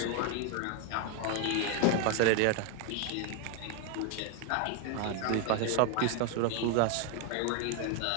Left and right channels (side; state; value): both; different; correlation 0.01